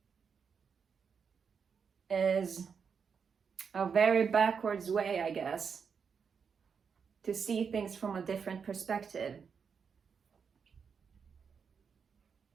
is a very backwards way, I guess, to see things from a different perspective.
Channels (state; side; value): quieter; left; 6.2 dB